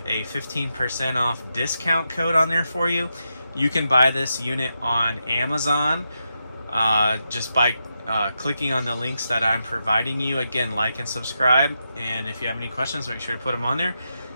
a 15% off discount code on there for you. You can buy this unit on Amazon just by clicking on the links that I'm providing you. Again, like and subscribe. And if you have any questions, make sure to put them on there.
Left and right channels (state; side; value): inverted; both; correlation -0.86